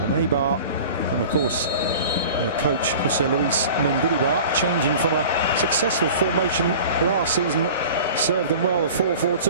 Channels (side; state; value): both; inverted; correlation -0.40